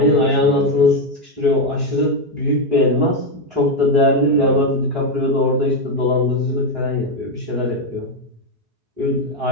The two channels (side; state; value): left; late; 4.8 ms